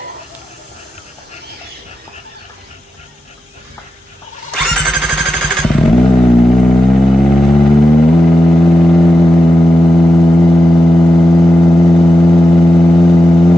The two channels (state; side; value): normal; both; correlation 0.90